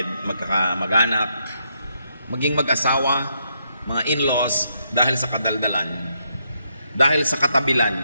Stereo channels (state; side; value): inverted; both; correlation -0.78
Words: magkakamag-anak, maging mag-asawa, mga in-laws dahil sa kadaldalan, dahil sa katabilan,